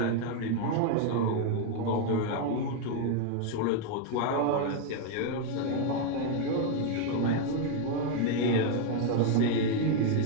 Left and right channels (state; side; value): different; both; correlation 0.00